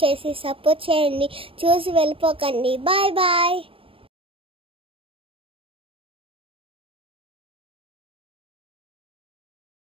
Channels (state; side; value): late; left; 0.26 ms